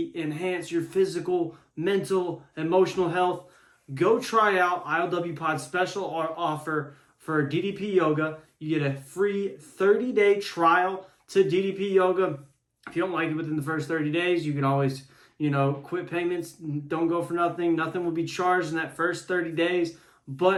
enhance your physical, mental, emotional health, go try out ILWPOD's special offer for DDPYoga. You get a free 30-day trial to DDPYoga. If you don't like it within the first 30 days, you can always quit payments. Don't go for nothing. Nothing will be charged in that first 30 days,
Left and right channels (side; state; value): both; identical; correlation 1.00